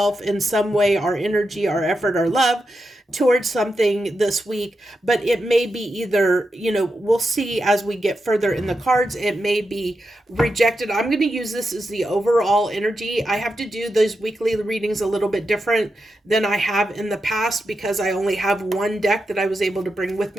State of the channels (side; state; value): both; normal; correlation 0.88